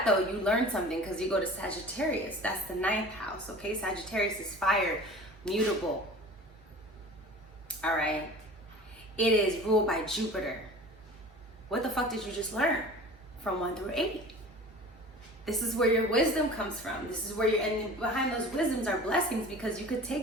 though, you learn something, because you go to Sagittarius. That's the 9th house, okay? Sagittarius is fire, mutable. All right? It is ruled by Jupiter. What the fuck did you just learn from 1 through 8? This is where your wisdom comes from. This is where and behind those wisdoms are blessings, because you could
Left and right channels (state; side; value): normal; both; correlation 0.40